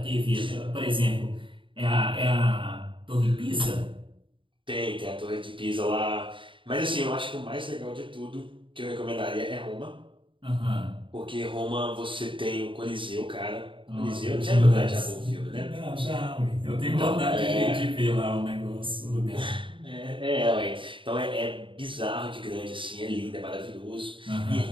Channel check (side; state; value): left; late; 0.25 ms